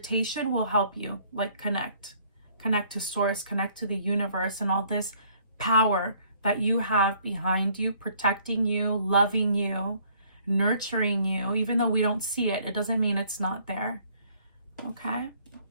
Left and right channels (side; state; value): both; inverted; correlation -0.61